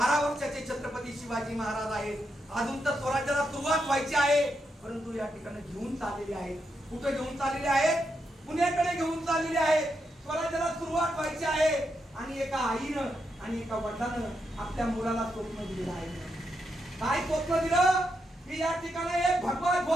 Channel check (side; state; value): both; normal; correlation 0.83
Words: वर्षाचे छत्रपती शिवाजी महाराज आहेत. अजून तर स्वराज्याला सुरुवात व्हायची आहे, परंतु या ठिकाणी घेऊन चाललेले आहेत. कुठे घेऊन चाललेले आहेत, पुण्याकडे घेऊन चाललेले आहेत. स्वराज्याला सुरुवात व्हायची आहे आणि एका आईनं आणि एका वडिलानं आपल्या मुलाला स्वप्न दिलेलं आहे. काय स्वप्न दिलं की या ठिकाणी एक भगवा